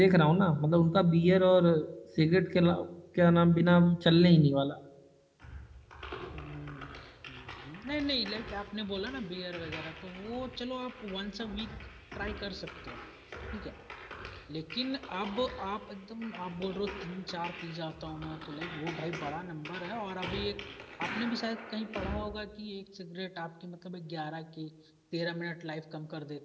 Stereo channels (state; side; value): identical; both; correlation 1.00